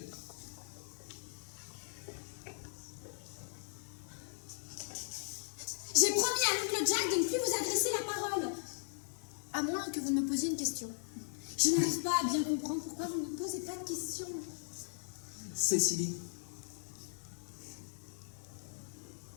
J'ai promis à l'oncle Jack de ne plus vous adresser la parole. À moins que vous ne me posiez une question. Je n'arrive pas à bien comprendre pourquoi vous ne me posez pas de questions. Cécilie,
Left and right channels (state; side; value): silent; right; 52 dB below the other